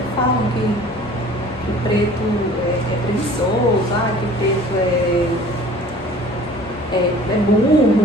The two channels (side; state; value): both; normal; correlation 0.48